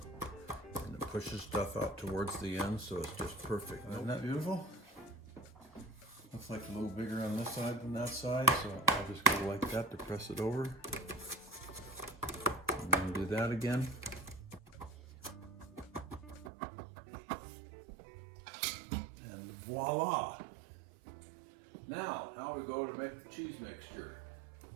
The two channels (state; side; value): drops out; left; at 16.5 s